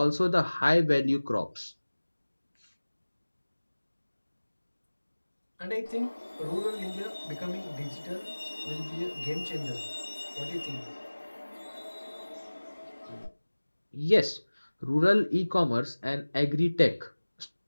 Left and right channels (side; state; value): both; inverted; correlation -1.00